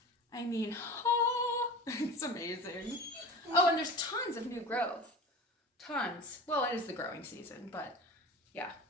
I mean, oh, it's amazing. Oh, and there's tons of new growth. tons. Well, it is the growing season, but yeah,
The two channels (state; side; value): normal; both; correlation 0.34